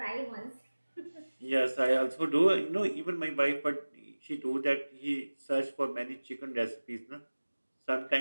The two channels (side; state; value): both; inverted; correlation -1.00